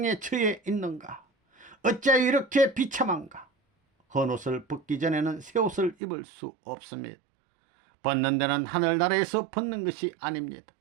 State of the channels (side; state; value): left; drops out; at 6.0 s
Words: 처해 있는가? 어찌하여 이렇게 비참한가? 헌옷을 벗기 전에는 새 옷을 입을 수 없습니다. 벗는 데는 하늘나라에서 벗는 것이 아닙니다.